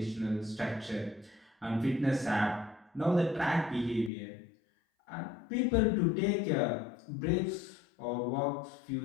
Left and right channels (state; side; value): drops out; right; at 4.1 s